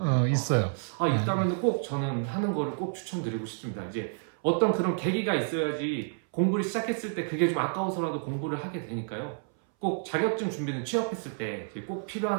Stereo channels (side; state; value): left; silent; 58 dB below the other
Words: 있어요. 있다면 꼭 저는 하는 거를 꼭 추천드리고 싶습니다. 이제 어떤 그런 계기가 있어야지 공부를 시작했을 때 그게 좀 아까워서라도 공부를 하게 되니까요. 꼭 자격증 준비는 취업했을 때 꼭